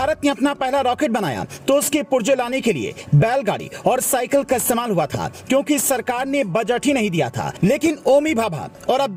ने अपना पहला रॉकेट बनाया तो उसके पुर्जे लाने के लिए बैलगाड़ी और साइकिल का इस्तेमाल हुआ था, क्योंकि सरकार ने बजट ही नहीं दिया था। लेकिन ओमी भाभा और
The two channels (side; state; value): both; identical; correlation 1.00